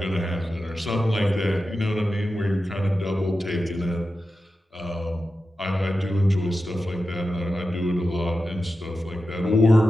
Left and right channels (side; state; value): both; normal; correlation 0.92